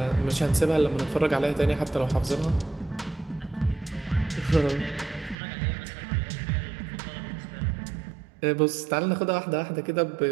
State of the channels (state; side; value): drops out; left; at 5.4 s